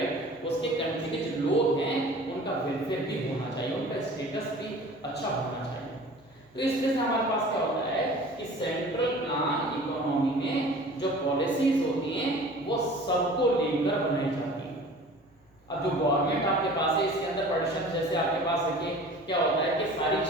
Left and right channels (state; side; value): normal; both; correlation 0.44